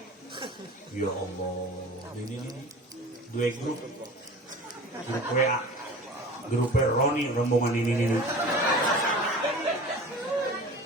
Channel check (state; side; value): normal; both; correlation 0.39